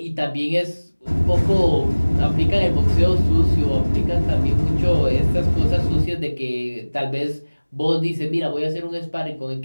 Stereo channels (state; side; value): inverted; both; correlation -1.00